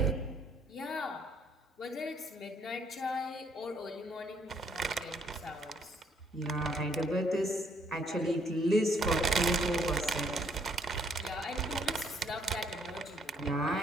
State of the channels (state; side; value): normal; both; correlation 0.68